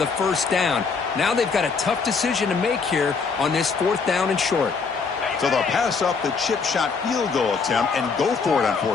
first down. Now they've got a tough decision to make here on this fourth down and short. So they'll pass up the chip shot field goal attempt and go for it on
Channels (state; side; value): quieter; right; 5.1 dB